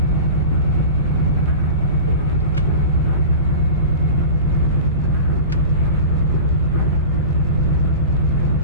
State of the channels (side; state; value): both; inverted; correlation -0.33